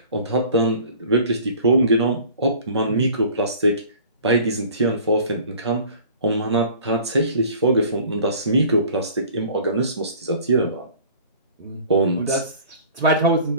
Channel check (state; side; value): inverted; both; correlation -0.46